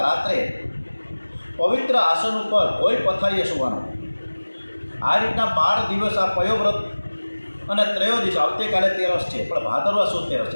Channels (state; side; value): inverted; both; correlation -1.00